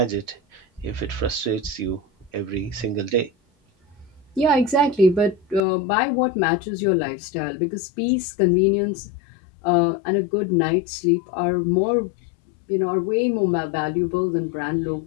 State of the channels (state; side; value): drops out; right; at 5.6 s